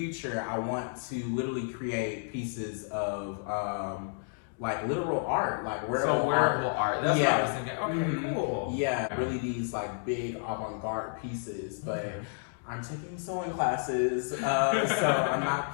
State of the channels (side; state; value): right; silent; digital silence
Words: I want to literally create pieces of like literal art, like wearable art. That's what I was thinking. Okay, cool. Yeah, really these like big avant-garde pieces, but I'm taking sewing classes, so I'm not